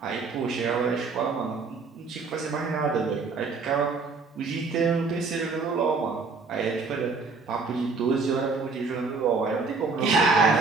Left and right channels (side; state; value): left; quieter; 4.3 dB